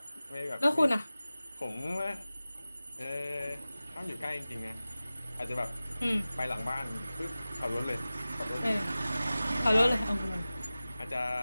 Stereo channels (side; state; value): both; inverted; correlation -0.97